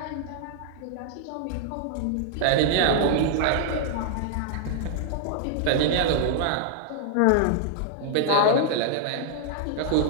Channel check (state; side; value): different; both; correlation -0.01